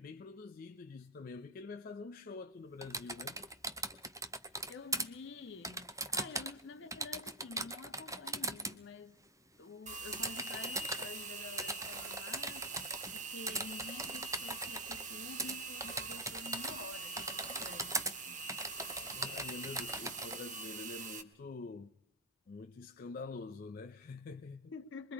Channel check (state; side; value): normal; both; correlation 0.01